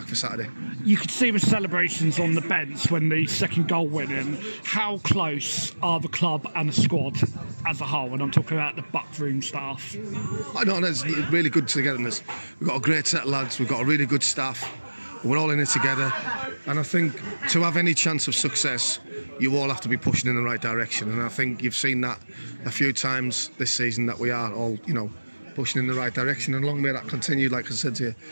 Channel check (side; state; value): both; inverted; correlation -1.00